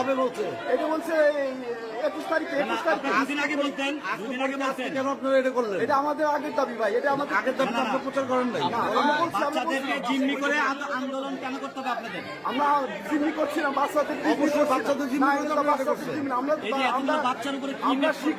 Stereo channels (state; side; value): identical; both; correlation 1.00